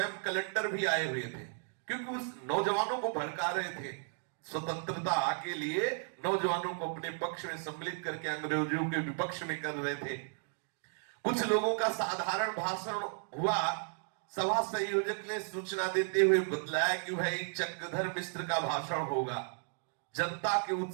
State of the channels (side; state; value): left; silent; 55 dB below the other